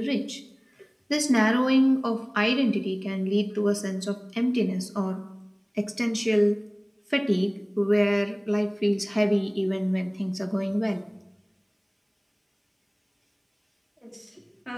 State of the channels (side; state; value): both; identical; correlation 1.00